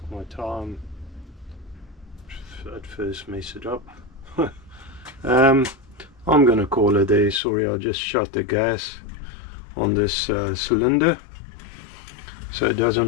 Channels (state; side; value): drops out; right; at 7.4 s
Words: my time. At first mess it up. I'm gonna call it there. Sorry, I just shut the gas on this cylinder so it